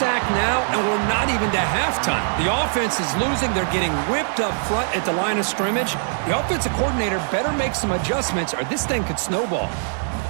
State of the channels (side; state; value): left; silent; digital silence